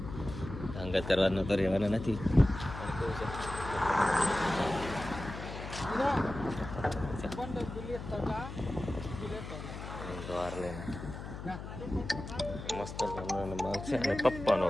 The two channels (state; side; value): noise; left; hum, 9 dB below the sound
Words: અંગત કરવાનો તો રહેવાના નથી. દ્વાર લઈને મસ્ત માલ છે અને પપ્પાનો